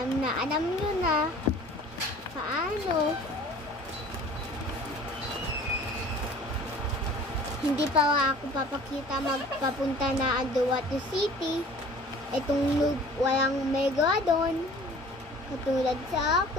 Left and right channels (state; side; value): normal; both; correlation 0.47